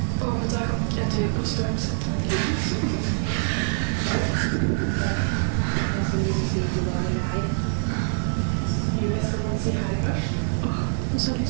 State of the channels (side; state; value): left; silent; 62 dB below the other